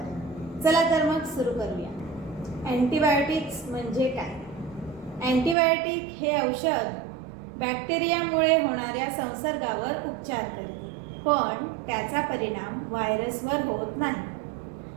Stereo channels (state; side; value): drops out; left; at 5.6 s